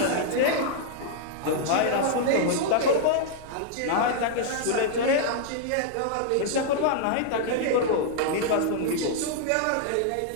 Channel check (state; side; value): different; both; correlation -0.01